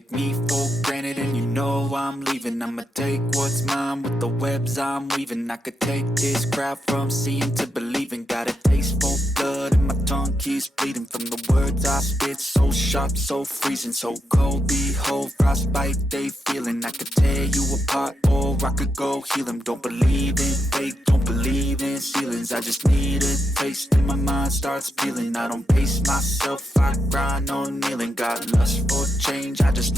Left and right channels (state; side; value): normal; both; correlation 0.84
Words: me for granted and you know I'm leaving. I'ma take what's mine with the webs I'm weaving. I could take this crowd from seeing to believing. Got a taste for blood and my tongue keeps bleeding from the words I spit. So sharp, so freezing, so cold. Behold, frostbite they feeling. I could tear you apart or I could go heal them. Don't believe in fate, don't believe in ceilings. I just need a taste and my mind starts peeling. I don't pace myself, I grind on kneeling. Got lust for change, I just